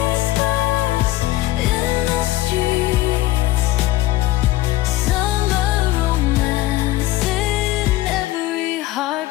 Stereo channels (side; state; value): right; quieter; 16.7 dB